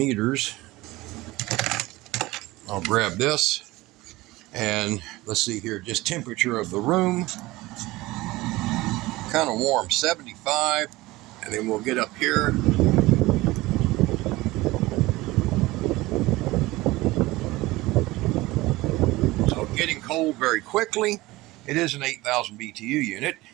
I'll grab this. And let's see here, just temperature of the room. Kind of warm, 75. And then we'll get up here. So getting cold very quickly. It is an 8,000 BTU unit,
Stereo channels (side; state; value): left; quieter; 19.6 dB